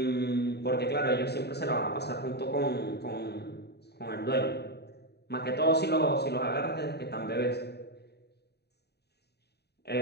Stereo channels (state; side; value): late; right; 0.48 ms